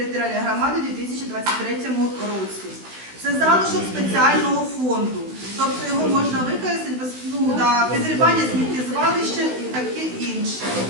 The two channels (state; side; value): late; left; 16 ms